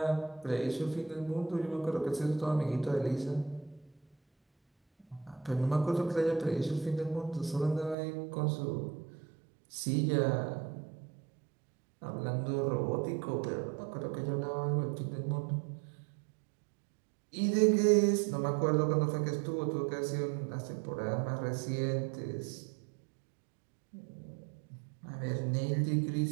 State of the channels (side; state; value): left; drops out; at 8.0 s